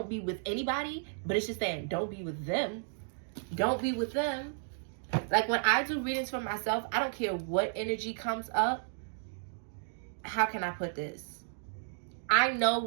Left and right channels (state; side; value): silent; left; digital silence